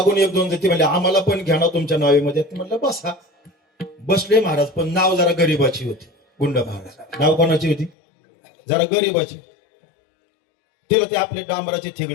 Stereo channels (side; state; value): right; drops out; at 7.9 s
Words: 1-2 जण म्हणले आम्हाला पण घ्या ना तुमच्या नावेमध्ये. म्हणलं बसा. बसले महाराज, पण नाव जरा गरीबाची होती. गुंड महाराज नाव कोणाची होती, जरा गरीबाची. तिला ते आपले डांबराचे